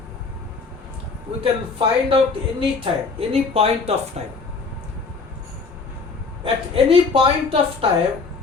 we can find out any time, any point of time. At any point of time,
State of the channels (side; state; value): right; quieter; 4.5 dB